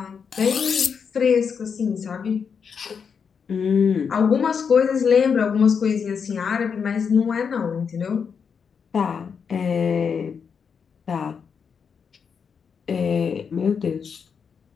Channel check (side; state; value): right; quieter; 6.4 dB